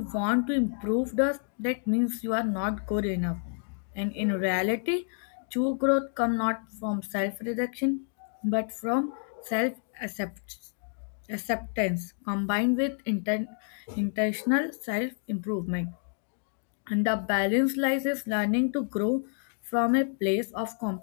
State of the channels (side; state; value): right; silent; 58 dB below the other